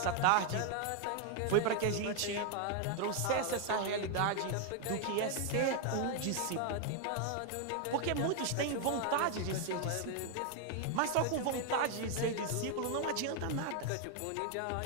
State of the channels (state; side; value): different; both; correlation 0.00